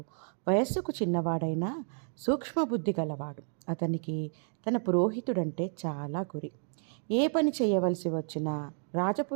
వయస్సుకు చిన్నవాడైనా సూక్ష్మబుద్ధి గలవాడు. అతనికి తన పురోహితుడంటే చాలా గురి. ఏ పని చేయవలసి వచ్చినా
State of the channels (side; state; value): left; silent; 57 dB below the other